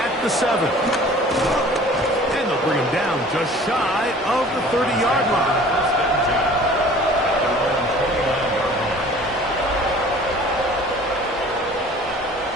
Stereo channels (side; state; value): both; normal; correlation 0.48